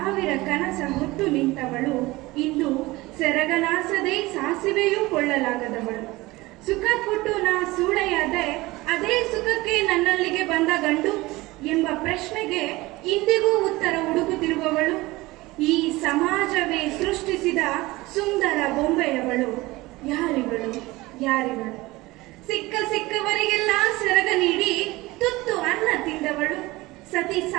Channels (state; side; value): quieter; left; 20.4 dB